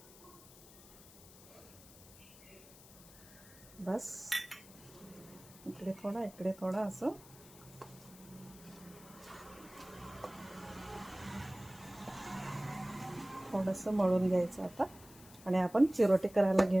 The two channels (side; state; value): left; noise; hiss, 20 dB below the sound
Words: बस इकडे थोडा इकडे थोडा असं थोडंसं मळून घ्यायचं आता. आणि आपण चिरोटे करायला